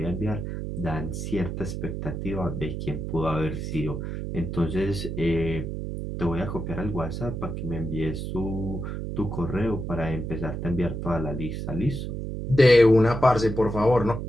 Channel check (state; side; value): noise; right; hum, 5 dB below the sound